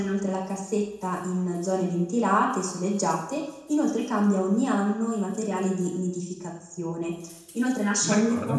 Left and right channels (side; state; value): both; identical; correlation 1.00